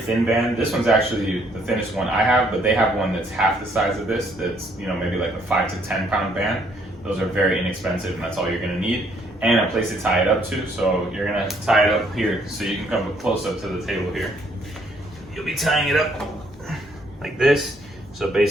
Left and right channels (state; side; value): normal; both; correlation 0.67